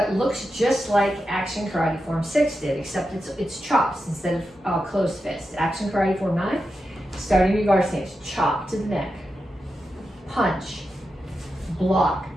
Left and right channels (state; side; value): normal; both; correlation 0.89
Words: looks just like Action Karate Form 6 did, except it's chops instead of closed fists. Action Karate Form 9, starting your guard stance, chop to the neck, punch, block,